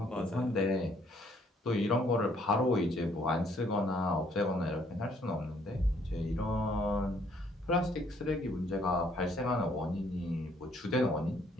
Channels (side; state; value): both; normal; correlation 0.65